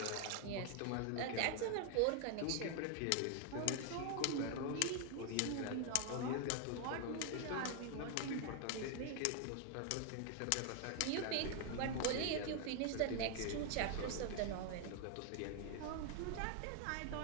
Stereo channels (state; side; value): different; both; correlation 0.00